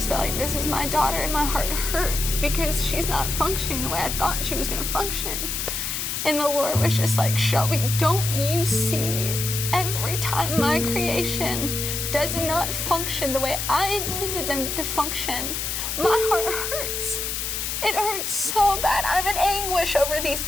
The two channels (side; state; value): left; noise; hiss, 2 dB below the sound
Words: but like, this is my daughter and my heart hurts because she's not functioning the way I thought she was going to function. And the Lord was just like, Shelby, don't you see every time my creation does not function the way I intended them to function, my heart hurts. It hurts so bad. I'm in anguish over these